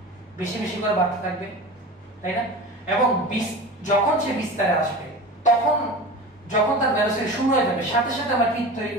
বেশি বেশি করে বাড়তে থাকবে, তাই না? এবং যখন সে বিস্তারে আসবে যখন তার ভেলোসিটি শুরু হয়ে যাবে, সাথে সাথে আমার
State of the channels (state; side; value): normal; both; correlation 0.33